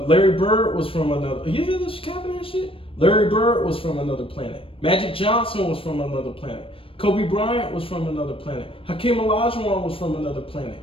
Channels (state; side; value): late; right; 0.26 ms